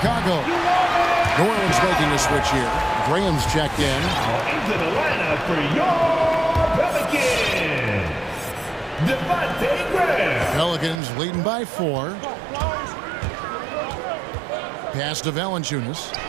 New Orleans making a switch here. Graham's checked in. Into the lineup for your Pelicans, Devontae Graham. Pelicans leading by 4. Pass to Valanciunas.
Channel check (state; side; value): drops out; left; at 11.0 s